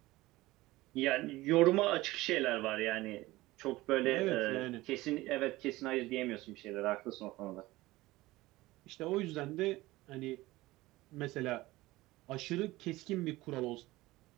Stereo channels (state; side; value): quieter; left; 18.9 dB